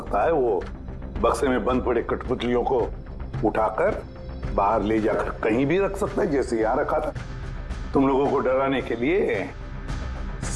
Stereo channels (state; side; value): identical; both; correlation 1.00